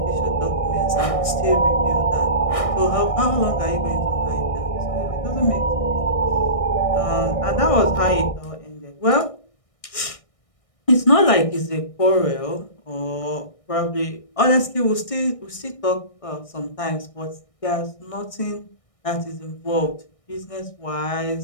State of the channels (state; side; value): late; right; 1.6 ms